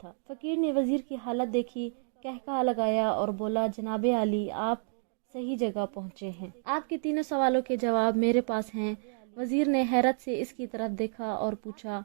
फकीर ने वजीर की हालत देखी, कहकहा लगाया और बोला, जनाबे आली, आप सही जगह पहुंचे हैं। आपके 3 सवालों के जवाब मेरे पास हैं। वजीर ने हैरत से इसकी तरफ देखा और पूछा,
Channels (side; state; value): left; silent; digital silence